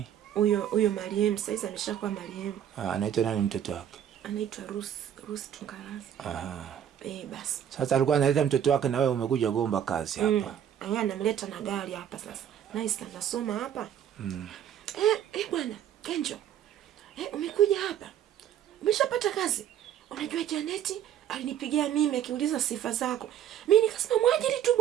Huyo Mariam, sasa ameshakuwa Mariam. Anaitwa nani mtoto wake? Anaitwa Rusi Tungarazi. Basi. Sasa alikuwa analeta mtoto wake na wewe umekuja gomba kazi hapa. Anamleta na gari hapa sasa. Nice, anasoma hapa. Bwana, Kenjo. Umekuja hapa. Umeshapata kazi. Unajua Janeti alinipigia mimi akiuliza sifa zako. Mimi nikasema mwajiri tu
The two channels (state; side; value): quieter; left; 10.0 dB